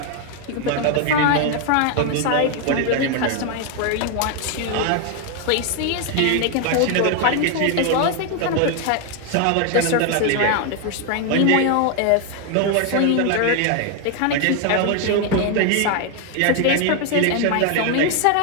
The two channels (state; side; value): different; both; correlation 0.01